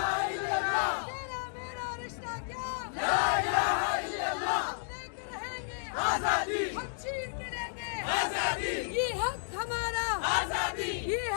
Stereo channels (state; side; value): silent; right; digital silence